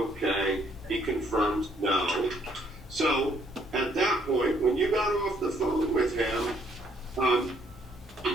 He confirms no. So at that point, when you got off the phone with him,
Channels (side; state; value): both; normal; correlation 0.67